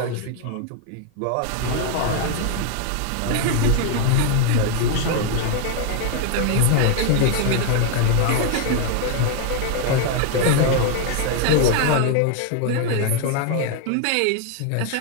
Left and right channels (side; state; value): both; different; correlation 0.00